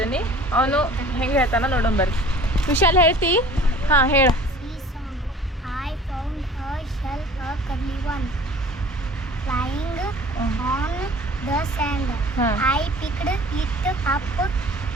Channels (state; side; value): normal; both; correlation 0.47